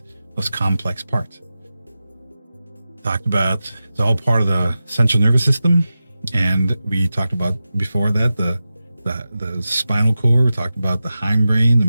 most complex part. Talked about it's all part of the central nervous system, and we talked about before that the spinal cord. We talked about the hindbrain, the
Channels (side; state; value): both; inverted; correlation -0.94